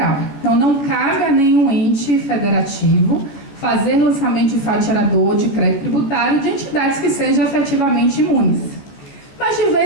Então, não cabe a nenhum ente federativo fazer lançamento de fatiador de crédito tributário de entidades que sejam efetivamente imunes. Mas, de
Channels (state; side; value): late; right; 14 ms